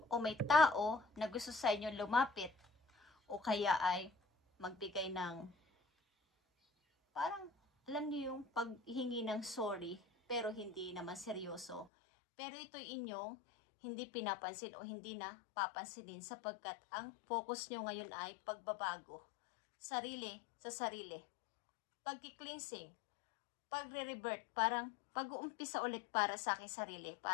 may tao na gusto sa inyo lumapit o kaya ay magbigay ng parang alam niyo yung paghingi ng sorry pero hindi naman seryoso. Pero ito'y inyong hindi pinapansin o hindi na papansinin sapagkat ang focus nyo ngayon ay pagbabago. Sarili sa sarili. Pagki-cleansing. Pagre-revert. Parang pag-uumpisa ulit para sa aking sarili.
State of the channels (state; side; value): drops out; right; at 11.9 s